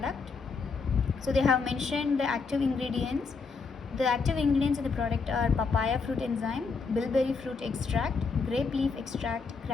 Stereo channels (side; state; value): right; quieter; 4.8 dB